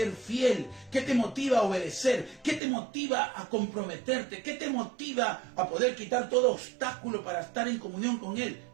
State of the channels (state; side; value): drops out; left; at 2.6 s